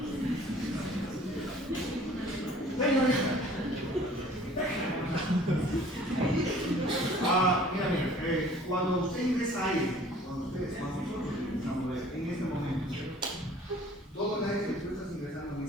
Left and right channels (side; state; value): both; normal; correlation 0.52